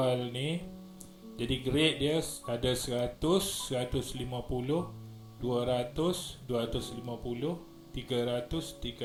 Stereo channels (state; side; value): identical; both; correlation 1.00